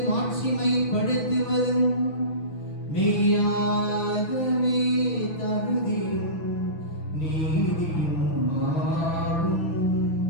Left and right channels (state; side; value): late; right; 6.0 ms